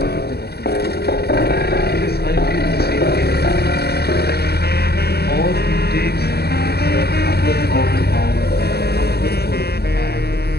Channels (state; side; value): late; right; 0.47 ms